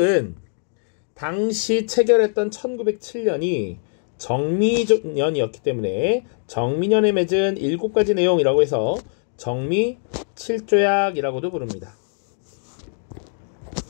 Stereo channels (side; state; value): right; silent; digital silence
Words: 당시 체결했던 1907년이 정미년이었기 때문에 정미년에 맺은 7가지 내용이라고 해서 정미 7조약이라고도 부릅니다.